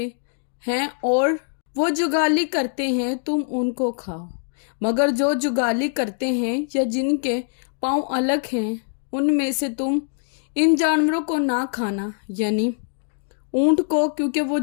ہیں اور وہ جگالی کرتے ہیں تم ان کو کھاؤ، مگر جو جگالی کرتے ہیں یا جن کے پاؤں الگ ہیں ان میں سے تم ان جانوروں کو نہ کھانا، یعنی اونٹ کو، کیونکہ وہ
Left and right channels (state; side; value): silent; right; digital silence